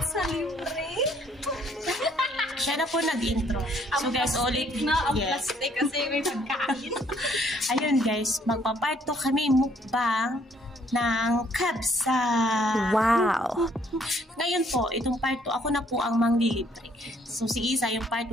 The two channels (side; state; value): both; normal; correlation 0.65